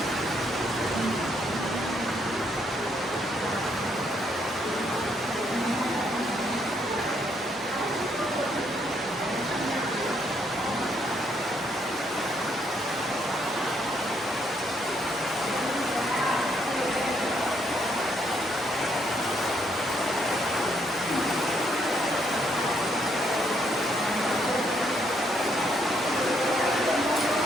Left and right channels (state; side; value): normal; both; correlation 0.73